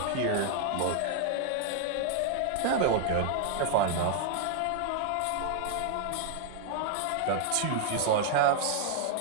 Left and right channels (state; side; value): different; both; correlation 0.00